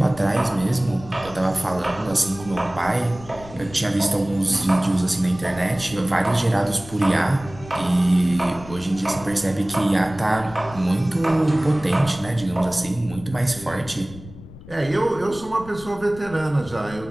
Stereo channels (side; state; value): left; noise; rumble, 17 dB below the sound